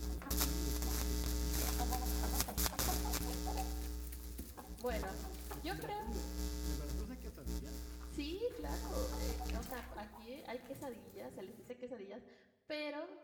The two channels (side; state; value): both; identical; correlation 1.00